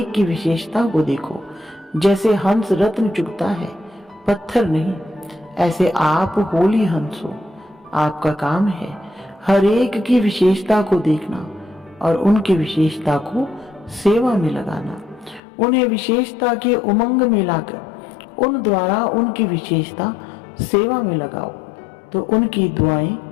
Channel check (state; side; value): drops out; right; at 15.4 s